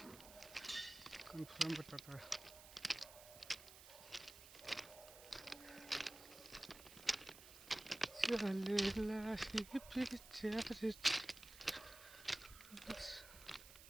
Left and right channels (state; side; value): noise; right; hiss, 16 dB below the sound